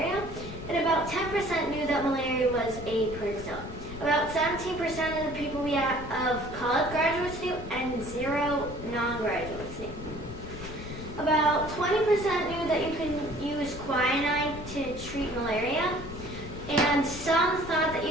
and about 10% knew that malaria was a protozoa. About 17% of the people of college graduates knew, and 0 non-graduates knew. About 20% knew that you can use quinine to treat malaria, and some thought that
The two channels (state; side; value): noise; left; rumble, 11 dB below the sound